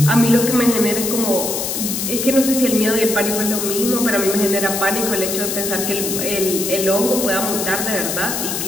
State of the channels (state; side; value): noise; left; hiss, 3 dB below the sound